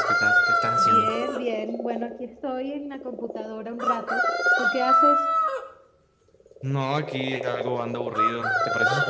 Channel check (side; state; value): both; identical; correlation 1.00